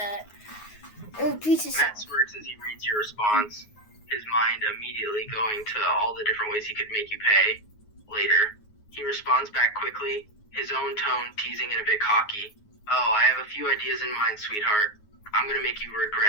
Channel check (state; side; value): late; right; 9.5 ms